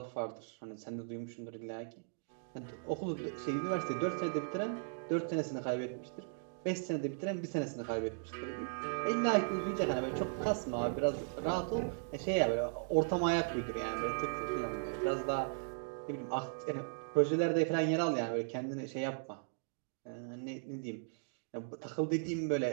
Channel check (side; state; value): left; silent; digital silence